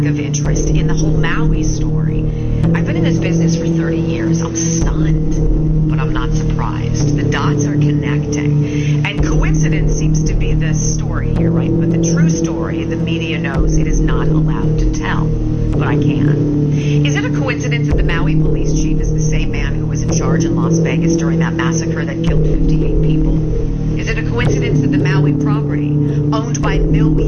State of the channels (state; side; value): identical; both; correlation 1.00